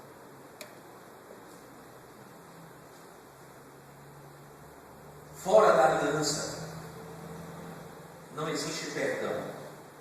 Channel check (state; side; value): identical; both; correlation 1.00